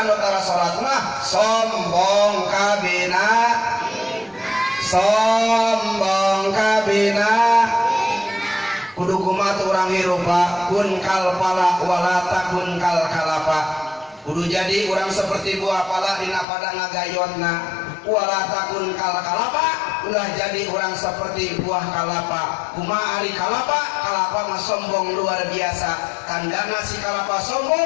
anu tara salat mah sombong kabina kudu kumaha urang hirup kun kal pala wala takun kal kalapa kudu jadi urang seperti buah pala dina pada ngagayotna wala takun kal kalapa ulah jadi urang seperti buah kalapa kumaha ari kalapa mah sombong luar biasa tandana si kalapa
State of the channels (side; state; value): right; drops out; at 16.4 s